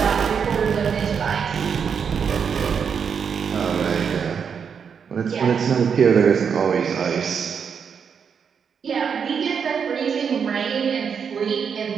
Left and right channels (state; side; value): quieter; left; 6.8 dB